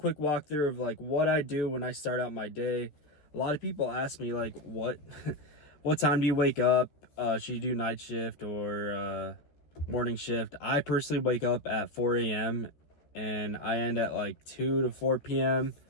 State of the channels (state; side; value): late; right; 14 ms